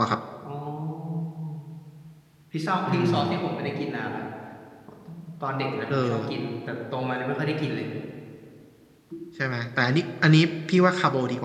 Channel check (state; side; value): identical; both; correlation 1.00